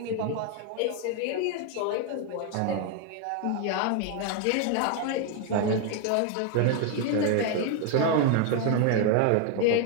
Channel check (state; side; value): different; both; correlation 0.01